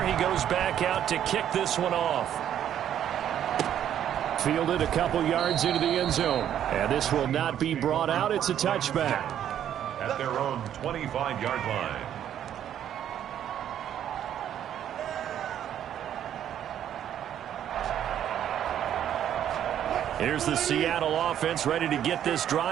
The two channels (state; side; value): quieter; left; 10.3 dB